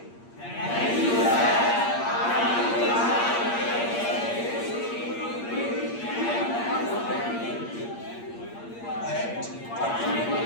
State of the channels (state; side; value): late; right; 8.6 ms